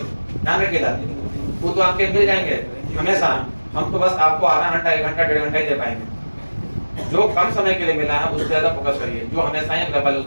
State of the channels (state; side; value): inverted; both; correlation -1.00